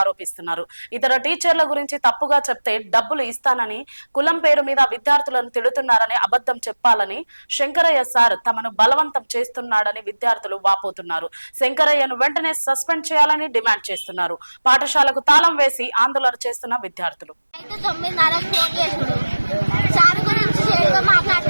ఇతర టీచర్ల గురించి తప్పుగా చెప్తే డబ్బులు ఇస్తానని, కులం పేరు మీద విద్యార్థులను తిడుతున్నారని, అబద్ధం చెప్పాలని శంకరయ్య సార్ తమను బలవంతం చేస్తున్నాడని విద్యార్థులు వాపోతున్నారు. శంకరయ్యను వెంటనే సస్పెండ్ చేయాలని డిమాండ్ చేస్తున్నారు. పాఠశాలకు తాళం వేసి ఆందోళన చేస్తున్న విద్యార్థులు.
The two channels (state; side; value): inverted; both; correlation -1.00